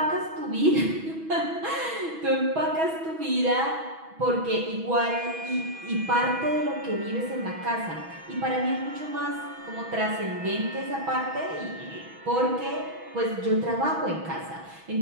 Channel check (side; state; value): left; late; 6.2 ms